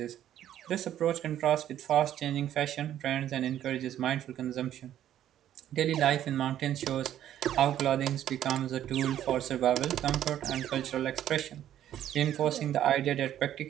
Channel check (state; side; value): quieter; left; 11.4 dB